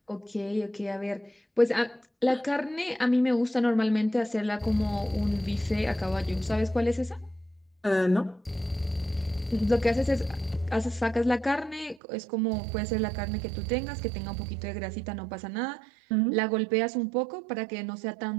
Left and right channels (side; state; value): left; drops out; at 12.0 s